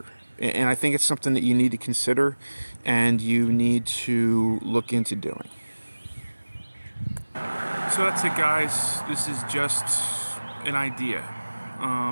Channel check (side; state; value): both; inverted; correlation -1.00